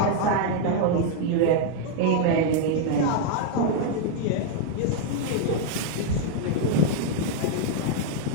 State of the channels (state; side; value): different; both; correlation 0.00